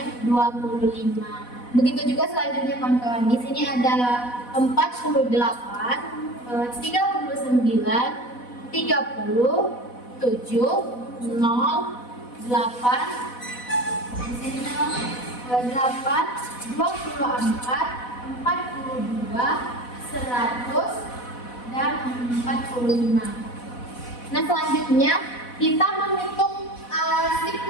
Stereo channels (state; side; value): late; right; 4.1 ms